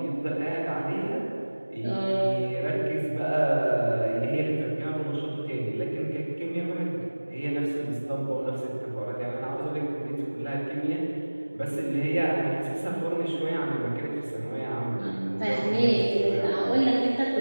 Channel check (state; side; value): inverted; both; correlation -1.00